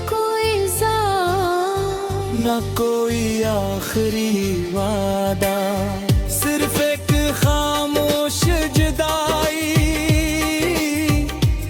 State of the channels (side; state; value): both; identical; correlation 1.00